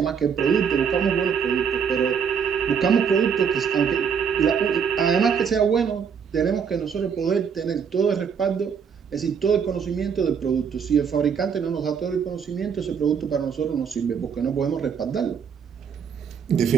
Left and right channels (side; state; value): left; quieter; 6.9 dB